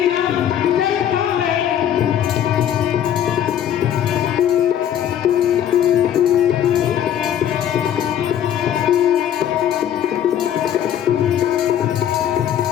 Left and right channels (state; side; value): quieter; right; 10.1 dB